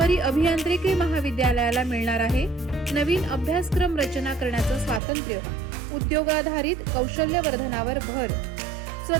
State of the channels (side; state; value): left; drops out; at 5.0 s